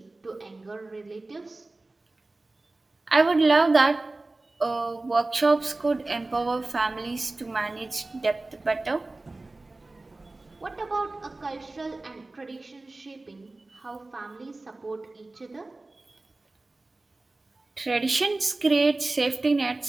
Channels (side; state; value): left; quieter; 3.1 dB